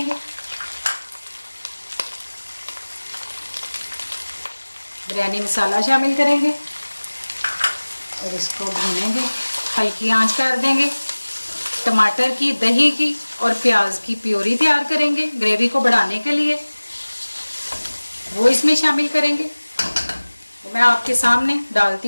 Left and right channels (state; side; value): inverted; both; correlation -1.00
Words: बिरयानी मसाला शामिल करेंगे और इसको भूनेंगे, हल्की आंच कर देंगे। टमाटर की, दही की और प्याज की प्योरी तैयार करेंगे ग्रेवी को बढ़ाने के लिए, वो इसमें शामिल करेंगे। तो मैं आपके सामने